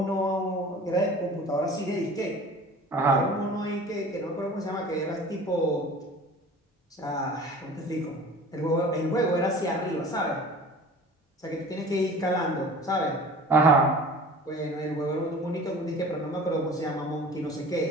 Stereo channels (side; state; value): both; normal; correlation 0.43